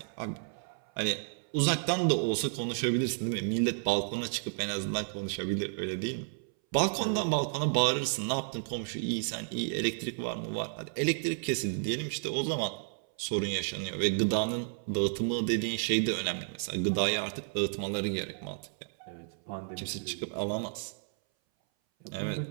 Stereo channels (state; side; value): silent; left; 57 dB below the other